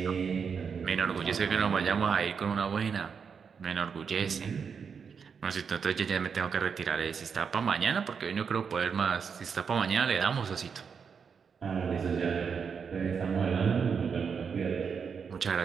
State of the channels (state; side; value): quieter; left; 6.3 dB